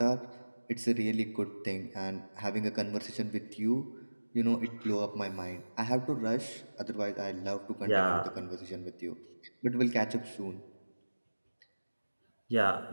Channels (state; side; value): inverted; both; correlation -1.00